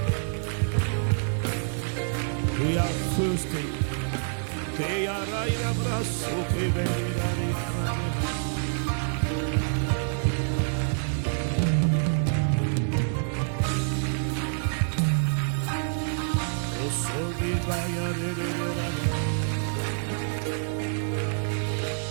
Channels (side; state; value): left; silent; 60 dB below the other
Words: We are thirsty. Que araina braso que venira.